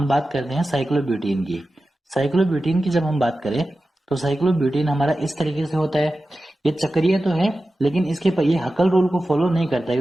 बात करते हैं साइक्लोब्यूटेन की। साइक्लोब्यूटेन की जब हम बात करें तो साइक्लोब्यूटेन हमारा इस तरीके से होता है, ये चक्रीय तो है लेकिन इसके पर ये हकल रूल को फॉलो नहीं करता है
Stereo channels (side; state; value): both; normal; correlation 0.94